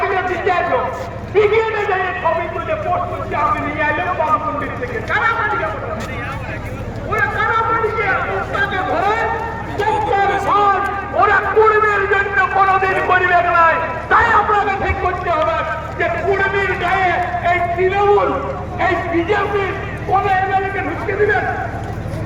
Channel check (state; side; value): identical; both; correlation 1.00